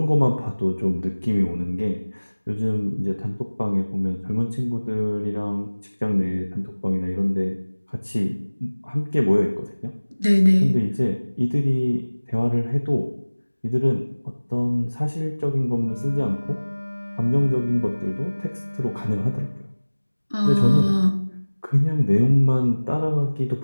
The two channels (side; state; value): both; inverted; correlation -1.00